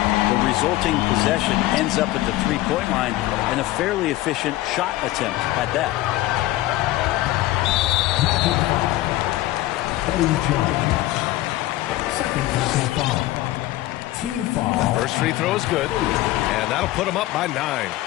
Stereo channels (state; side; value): quieter; right; 16.5 dB